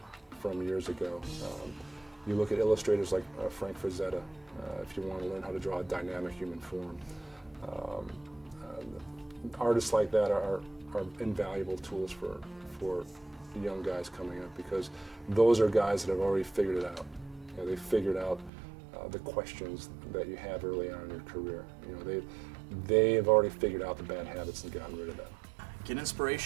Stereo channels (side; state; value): left; drops out; at 18.5 s